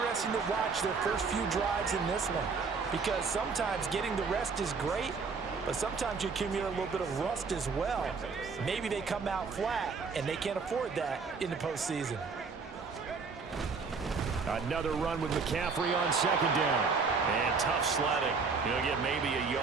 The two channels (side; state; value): left; quieter; 4.9 dB